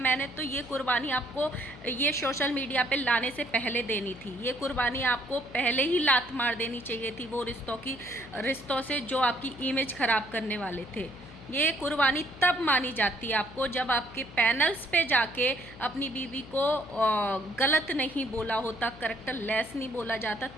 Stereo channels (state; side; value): noise; left; hum, 17 dB below the sound